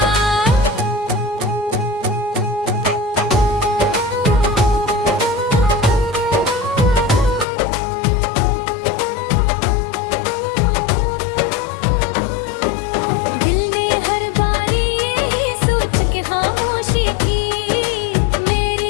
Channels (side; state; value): right; drops out; at 7.5 s